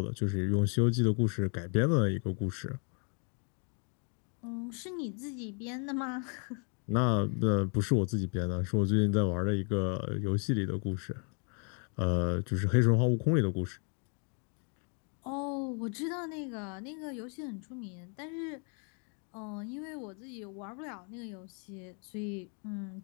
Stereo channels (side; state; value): right; quieter; 39.5 dB